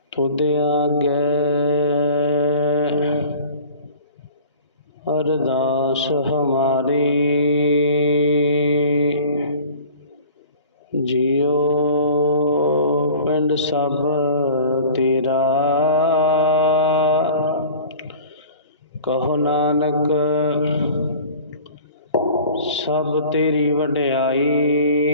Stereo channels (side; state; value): both; inverted; correlation -0.44